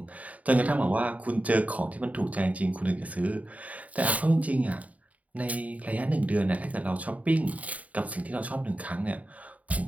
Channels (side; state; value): left; late; 0.070 ms